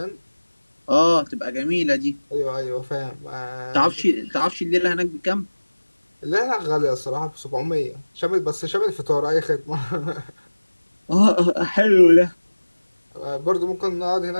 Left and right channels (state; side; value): inverted; both; correlation -1.00